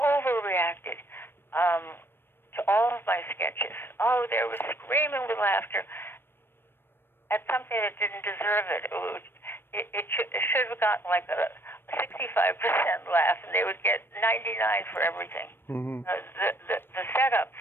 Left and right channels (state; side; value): late; right; 0.10 ms